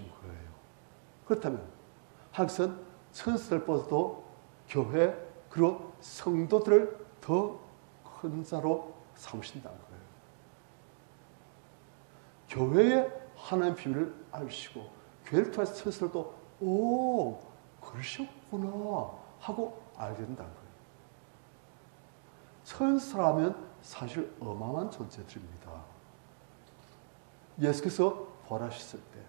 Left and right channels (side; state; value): left; silent; digital silence